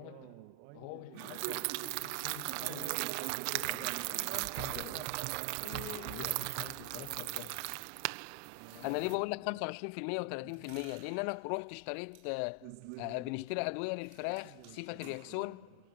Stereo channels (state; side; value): different; both; correlation 0.00